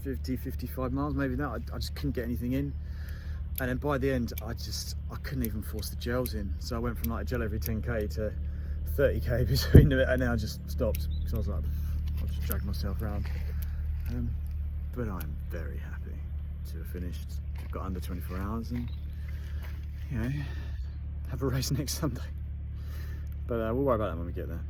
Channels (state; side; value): identical; both; correlation 1.00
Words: 50, 55 miles, maybe that. I just couldn't get anything in. And then by the end, I couldn't even force the gels in. So I went from like a gel every 10k to 30k between them, and then I just stopped because I was like, I'll just drag myself around. But I'm very happy to have finished. I've got under 24 hours and, you know, have a race next Sunday. But we'll worry about that when we get there.